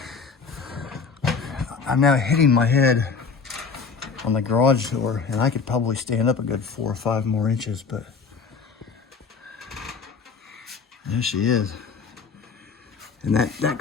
I'm now hitting my head on the garage door, and I could probably stand up a good 4 or 5 more inches, but there she is. And that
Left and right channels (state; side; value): quieter; right; 5.2 dB